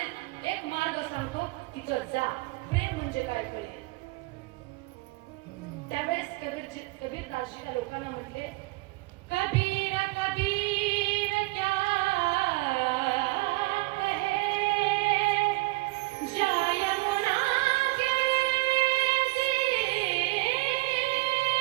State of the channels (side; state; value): left; quieter; 23.0 dB